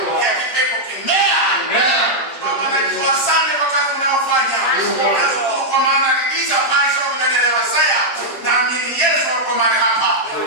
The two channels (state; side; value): late; right; 7.8 ms